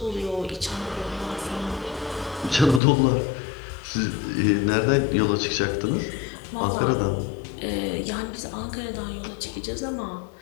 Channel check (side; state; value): right; drops out; at 2.8 s